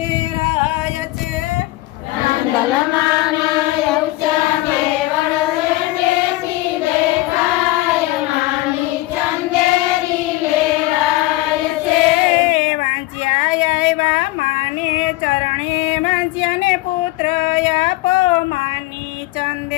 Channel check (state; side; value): quieter; right; 18.5 dB